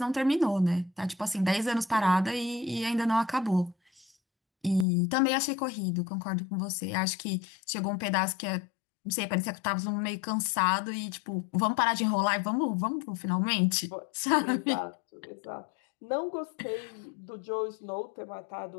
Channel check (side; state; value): right; drops out; at 4.9 s